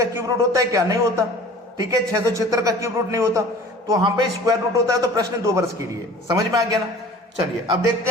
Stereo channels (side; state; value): both; normal; correlation 0.45